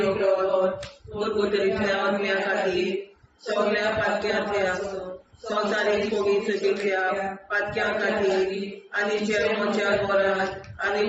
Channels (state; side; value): identical; both; correlation 1.00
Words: रगत परगोतरींतल्या आत्म्या खातीर सगळ्या पातक्यांतल्या संवसारीक पवित्र सभेंतल्या पातक्यां खातीर आनी जे म्हज्या घरांत आनी